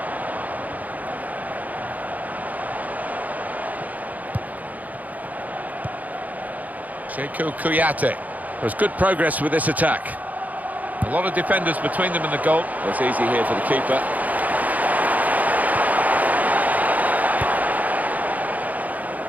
Sheku Kouyaté. There's good progress with this attack. A lot of defenders between them and the goal. It's easy here for the keeper.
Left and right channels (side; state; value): left; late; 0.078 ms